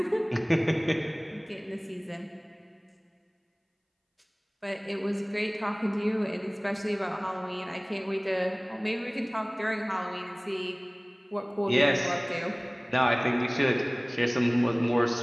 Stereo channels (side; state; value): both; identical; correlation 1.00